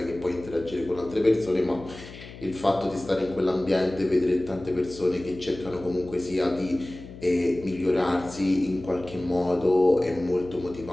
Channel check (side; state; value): left; noise; hum, 16 dB below the sound